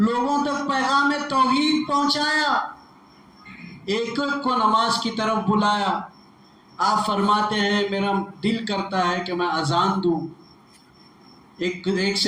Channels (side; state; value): both; identical; correlation 1.00